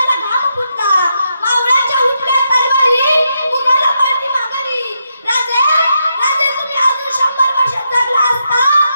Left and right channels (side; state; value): both; inverted; correlation -0.82